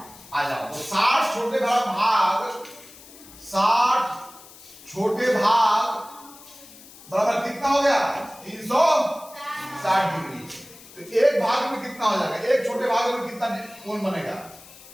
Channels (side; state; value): left; noise; hiss, 20 dB below the sound